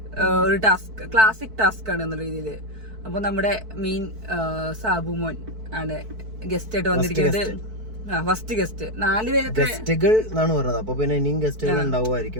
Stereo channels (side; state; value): left; late; 4.5 ms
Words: ടാസ്ക് ആണ് എന്ന രീതിയില്. അപ്പൊ നമ്മുടെ മെയിൻ സാബുമോൻ ആണ് ഗസ്റ്റ് ആയിട്ട് വന്നിരിക്കുന്നത്. ഫസ്റ്റ് ഗസ്റ്റ് 4 പേര് ഗസ്റ്റുകൾ എന്നാണ് പറഞ്ഞത്. അപ്പൊ പിന്നെ ഇനിയും ഗസ്റ്റുകൾ